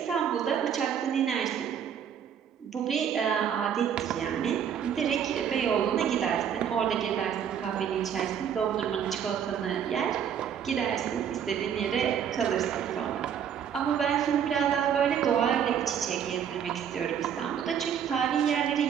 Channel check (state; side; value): quieter; left; 8.4 dB